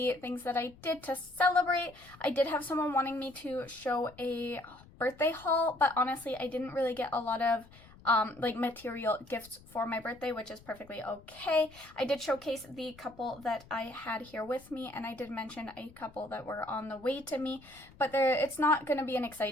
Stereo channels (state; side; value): noise; left; rumble, 23 dB below the sound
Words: things that I did to celebrate. I did have someone wanting me to show a birthday haul, but honestly I didn't really get a lot of like material gifts for my birthday, which is perfectly okay. I did showcase the couple that I had here with me, and I did mention a couple that were on the way to me, but it's not going to be an